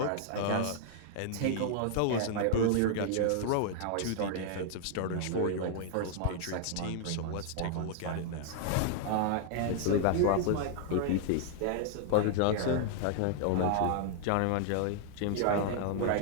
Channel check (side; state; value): both; different; correlation 0.00